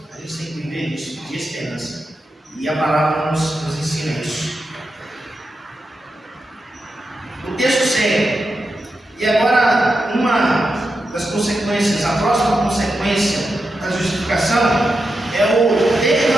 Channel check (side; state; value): both; normal; correlation 0.88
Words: A gente tem que viver disso, de esperança. E a palavra nos ensina isso. O texto segue. E agora, uma das consequências, a próxima consequência da justificação é o